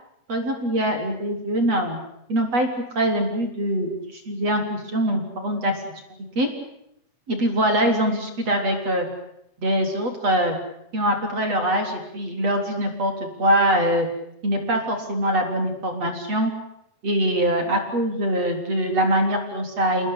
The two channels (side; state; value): left; late; 8.1 ms